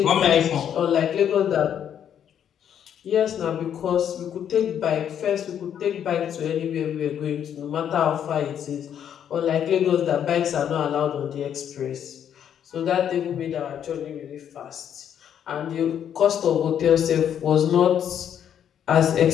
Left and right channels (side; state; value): right; quieter; 9.2 dB